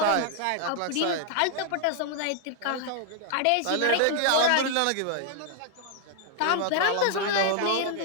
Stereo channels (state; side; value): different; both; correlation 0.00